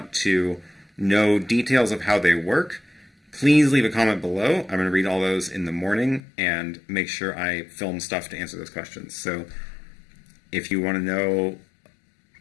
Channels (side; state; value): right; drops out; at 6.2 s